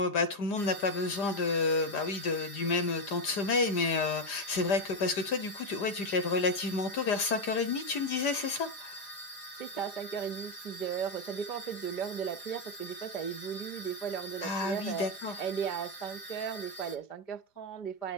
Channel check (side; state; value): right; late; 5.0 ms